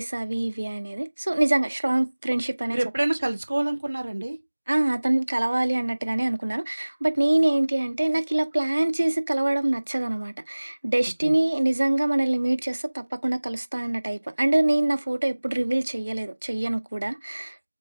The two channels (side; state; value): both; inverted; correlation -1.00